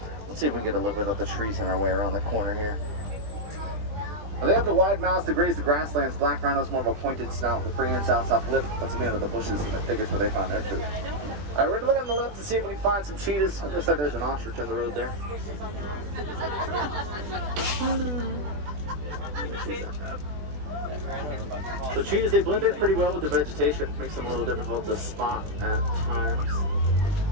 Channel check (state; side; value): late; left; 20 ms